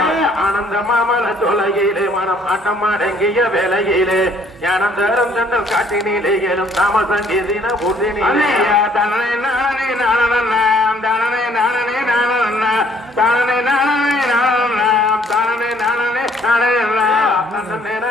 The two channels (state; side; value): normal; both; correlation 0.62